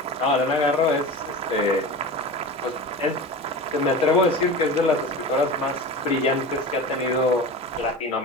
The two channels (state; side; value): normal; both; correlation 0.30